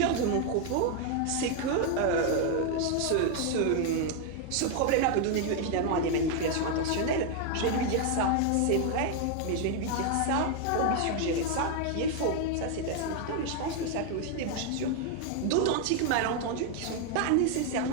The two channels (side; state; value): both; different; correlation 0.01